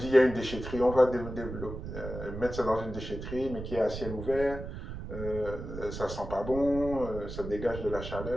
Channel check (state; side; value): noise; right; rumble, 8 dB below the sound